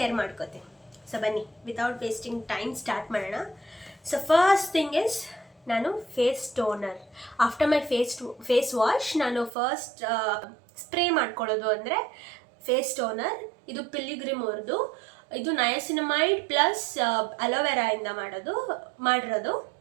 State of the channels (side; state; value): left; drops out; at 9.5 s